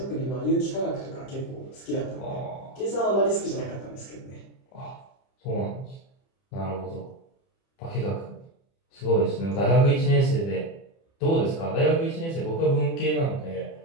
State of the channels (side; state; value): right; late; 30 ms